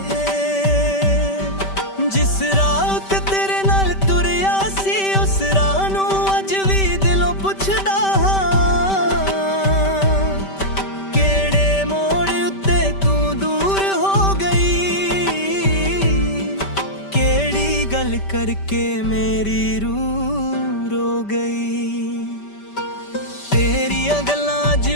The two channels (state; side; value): late; right; 5.1 ms